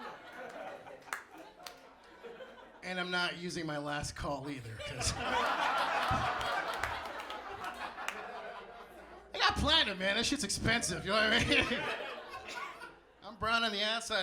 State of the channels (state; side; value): identical; both; correlation 1.00